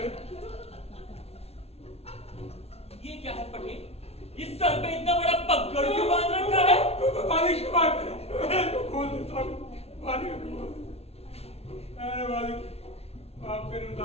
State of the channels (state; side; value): late; right; 0.30 ms